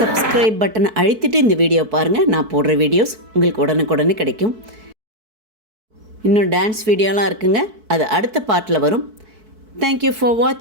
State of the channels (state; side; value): late; left; 4.6 ms